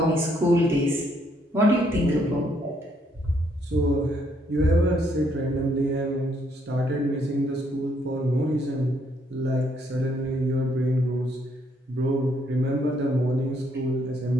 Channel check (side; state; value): both; normal; correlation 0.71